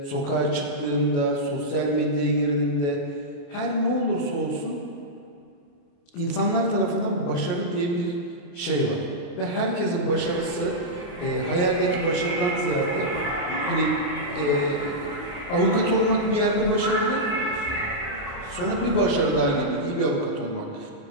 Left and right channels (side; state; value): right; late; 28 ms